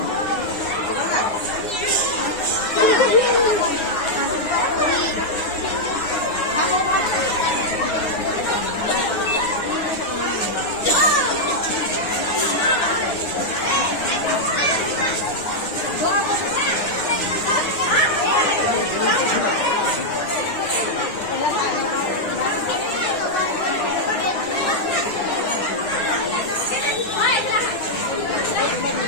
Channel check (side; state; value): right; late; 9.8 ms